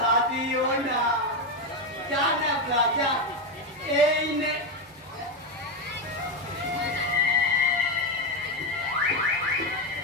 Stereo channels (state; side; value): normal; both; correlation 0.09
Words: দিও না। যা না যা, এই নে।